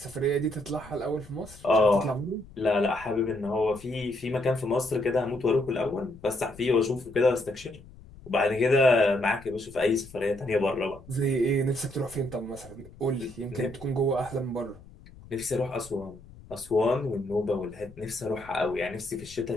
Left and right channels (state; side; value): noise; left; rumble, 20 dB below the sound